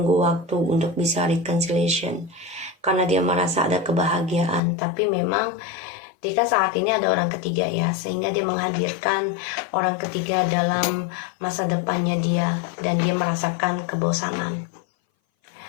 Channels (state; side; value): drops out; right; at 4.6 s